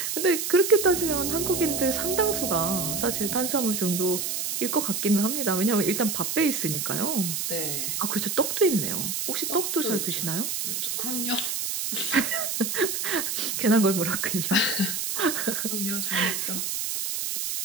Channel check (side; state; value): right; noise; hiss, 2 dB below the sound